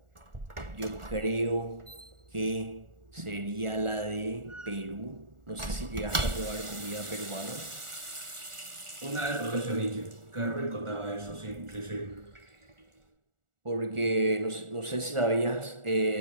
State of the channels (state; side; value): late; left; 1.4 ms